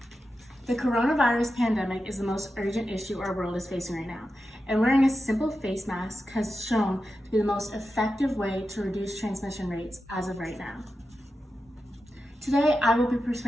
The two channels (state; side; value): normal; both; correlation 0.91